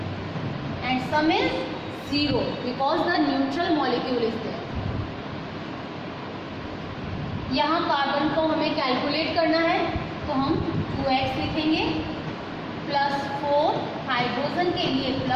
and sum is 0 because the neutral molecule is there. यहाँ कार्बन को हमें कैलकुलेट करना है तो हम 2x लिखेंगे, +4 हाइड्रोजन के लिए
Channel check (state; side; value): identical; both; correlation 1.00